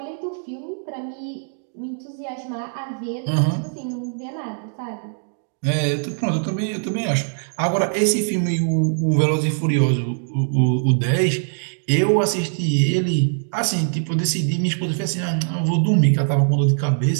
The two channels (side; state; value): left; silent; digital silence